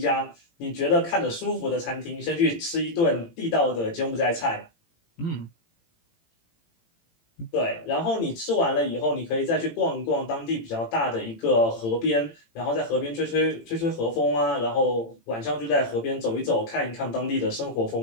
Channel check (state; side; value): late; right; 18 ms